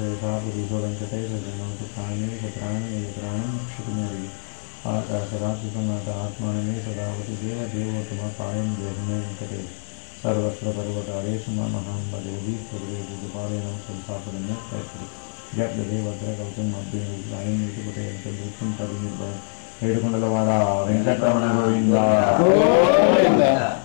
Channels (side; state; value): right; silent; 62 dB below the other